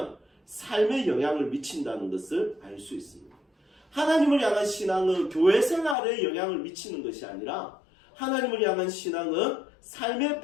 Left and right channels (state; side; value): drops out; right; at 6.0 s